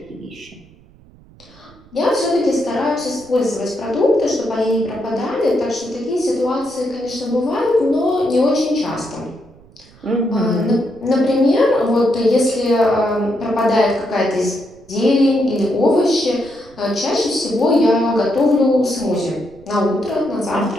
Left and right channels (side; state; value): right; noise; rumble, 26 dB below the sound